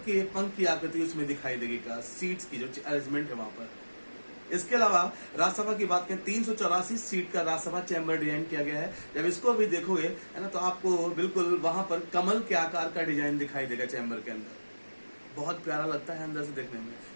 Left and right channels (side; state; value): both; inverted; correlation -1.00